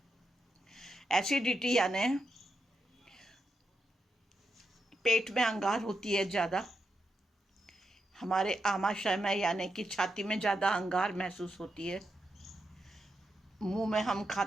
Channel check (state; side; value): normal; both; correlation 0.84